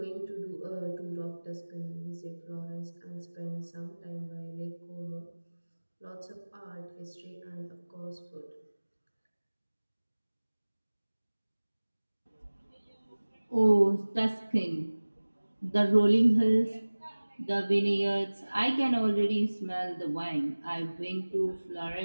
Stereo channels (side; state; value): both; inverted; correlation -1.00